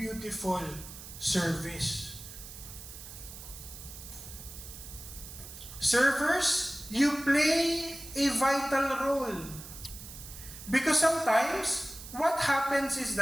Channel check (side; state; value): right; noise; hiss, 13 dB below the sound